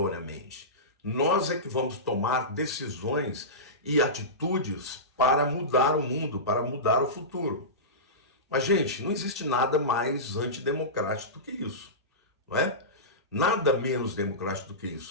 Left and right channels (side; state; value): both; normal; correlation -0.19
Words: Nós é que vamos tomar decisões e atitudes para mudar o mundo, para mudar o futuro. Mas, gente, não existe nada mais antidemocrático do que isso, não é? Nada menos democrático do que